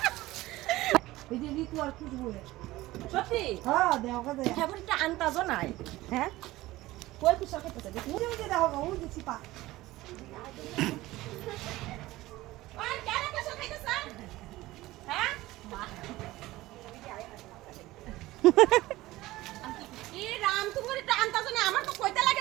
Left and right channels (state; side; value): quieter; left; 17.8 dB